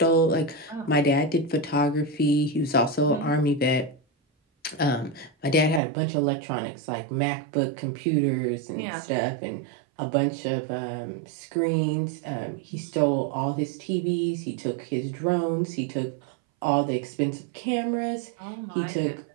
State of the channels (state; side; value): drops out; left; at 5.8 s